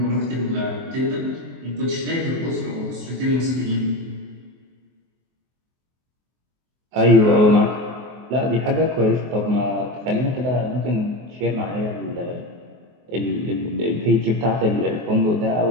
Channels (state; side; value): late; left; 24 ms